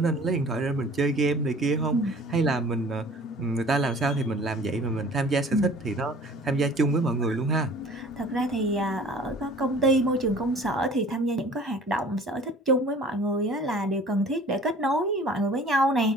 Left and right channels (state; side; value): normal; both; correlation 0.48